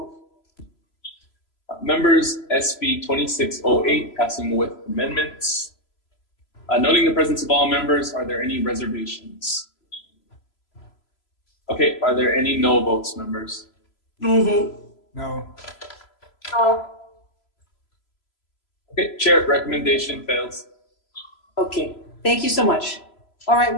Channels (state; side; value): late; right; 3.0 ms